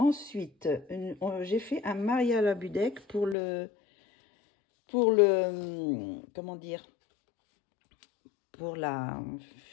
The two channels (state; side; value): drops out; right; at 3.4 s